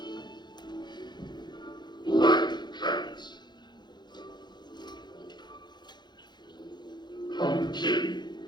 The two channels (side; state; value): right; late; 0.21 ms